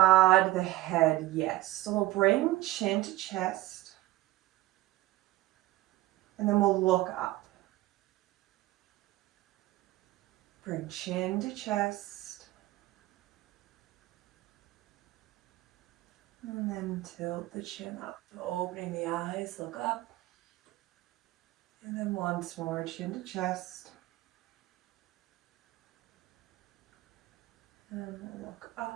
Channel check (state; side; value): quieter; left; 16.9 dB